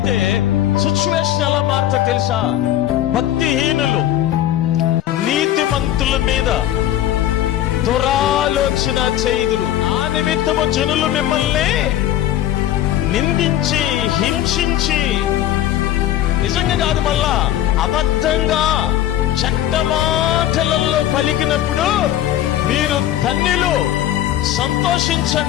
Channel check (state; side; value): quieter; right; 12.4 dB